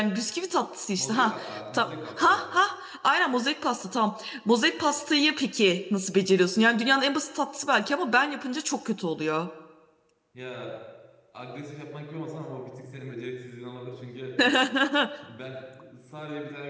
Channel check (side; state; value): both; identical; correlation 1.00